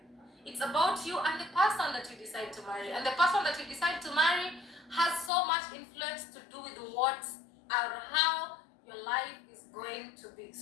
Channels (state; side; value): drops out; right; at 5.3 s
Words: It's about you and the person that you decide to marry. And the person that you decide to marry has so much influence to do with what or how your life is going to be.